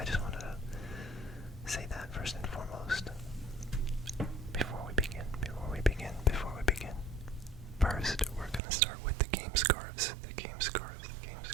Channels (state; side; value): drops out; left; at 8.6 s